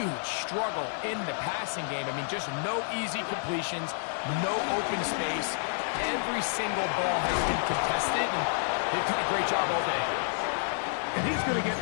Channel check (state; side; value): silent; right; 58 dB below the other